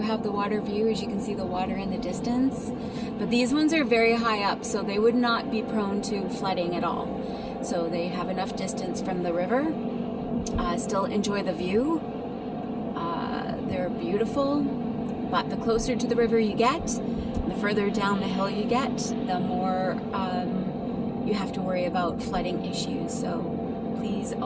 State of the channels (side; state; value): both; identical; correlation 1.00